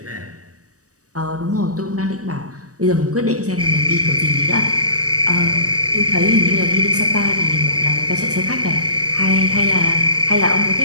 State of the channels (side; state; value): left; late; 0.66 ms